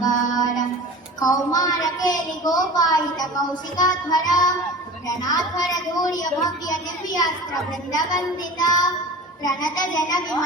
कौमार केलि गोपायित कौशिकाध्वर रणाध्वर धूर्य भव्य दिव्यास्त्र वृंदवंदित प्रणत जन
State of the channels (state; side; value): normal; both; correlation 0.37